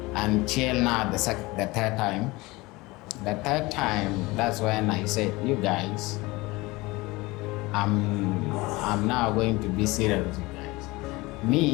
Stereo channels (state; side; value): quieter; right; 22.1 dB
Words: Until now, the third time. The third time, that's when I said, you guys, I'm now going to be serious with you guys.